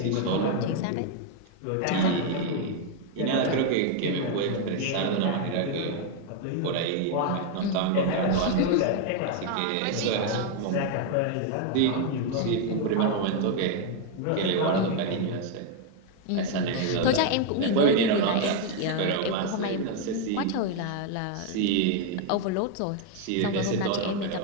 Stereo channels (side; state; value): both; different; correlation 0.00